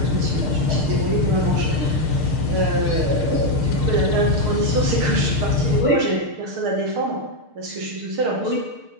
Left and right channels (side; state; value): left; late; 6.6 ms